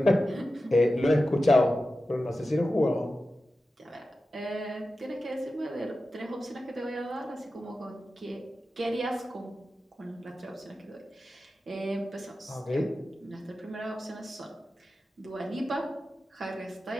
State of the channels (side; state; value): both; normal; correlation 0.93